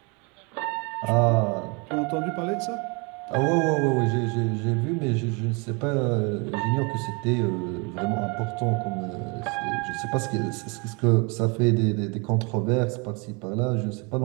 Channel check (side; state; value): left; quieter; 31.3 dB